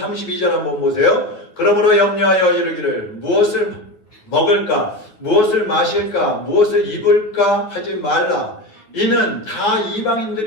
한번 보세요. 그러므로 염려하여 이르기를 무엇을 먹을까, 무엇을 마실까, 무엇을 입을까 하지 말라. 이는 다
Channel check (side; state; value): right; late; 9.2 ms